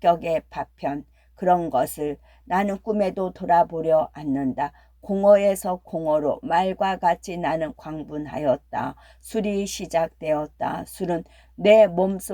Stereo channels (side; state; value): both; identical; correlation 1.00